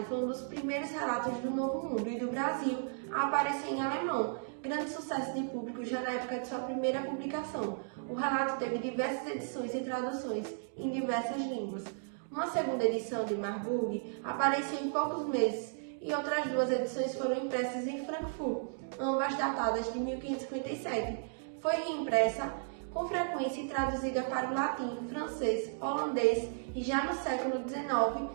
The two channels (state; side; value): silent; left; digital silence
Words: foi um dos primeiros relatos do Novo Mundo e do Brasil a aparecer em alemão, grande sucesso de público já na época de sua primeira publicação. O relato teve diversas edições e traduções em diversas línguas. Uma segunda edição de Marburg apareceu em poucos meses e outras 2 edições foram impressas em Frankfurt, ambas datadas de 1557. Foi reimpressa com frequência e traduzida para o latim, francês, holandês e já no século XIX